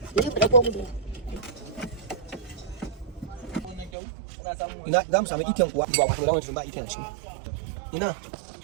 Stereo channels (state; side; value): drops out; left; at 3.9 s